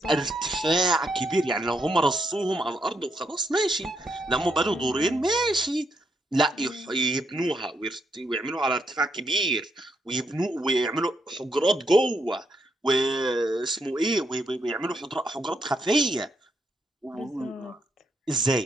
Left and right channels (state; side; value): normal; both; correlation 0.78